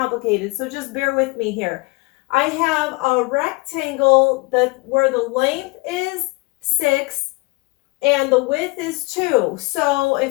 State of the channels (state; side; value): quieter; right; 25.8 dB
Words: so just bear with me here. I have a rectangle where the length is 6 and the width is 2. So